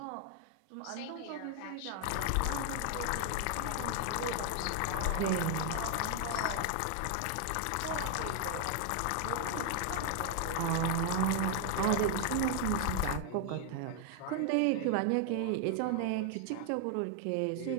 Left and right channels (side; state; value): both; different; correlation 0.00